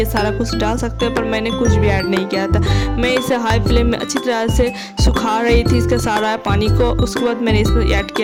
सारा कुछ डाल सकते हैं, पर मैंने कुछ भी ऐड नहीं किया था। मैं इसे हाई फ्लेम में अच्छी तरह से सुखा रही थी इसका सारा पानी को। उसके बाद मैंने इसमें ऐड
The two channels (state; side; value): identical; both; correlation 1.00